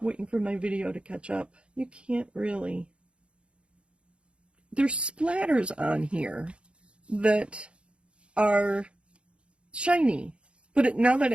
Waiting for my video to catch up. You can't really. There's splatters on here that are shiny. But now that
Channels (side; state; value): left; late; 0.058 ms